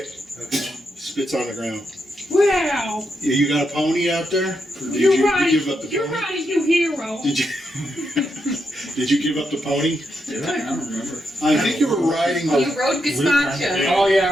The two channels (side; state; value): both; normal; correlation 0.82